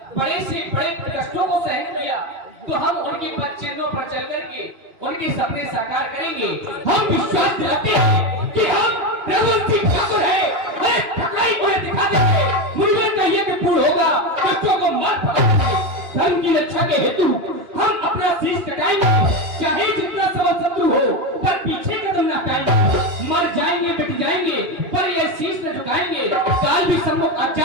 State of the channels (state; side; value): late; left; 2.7 ms